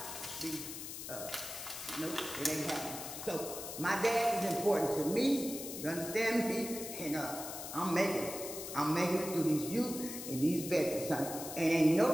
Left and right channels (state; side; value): noise; left; hiss, 8 dB below the sound